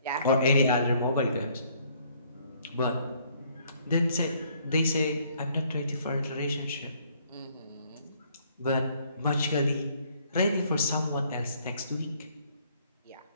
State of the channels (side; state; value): both; inverted; correlation -0.64